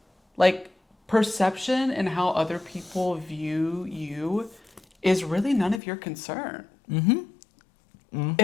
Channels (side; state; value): right; drops out; at 5.8 s